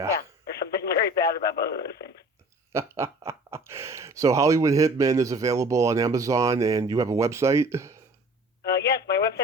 There's something very bad about both of those things. So Hollywood Hitmen is available on Amazon, and you have a website? Yes, my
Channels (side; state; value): both; normal; correlation 0.47